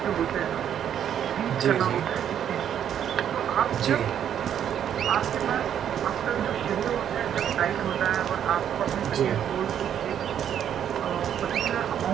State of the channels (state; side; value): quieter; left; 9.5 dB